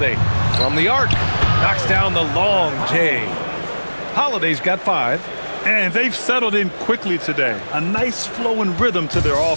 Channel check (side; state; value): both; inverted; correlation -1.00